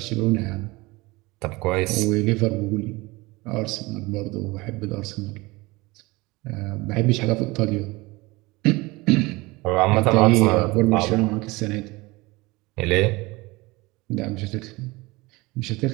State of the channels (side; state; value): left; quieter; 22.7 dB